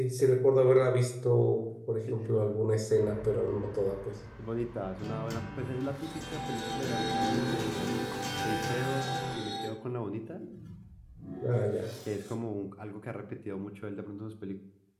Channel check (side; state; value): both; identical; correlation 1.00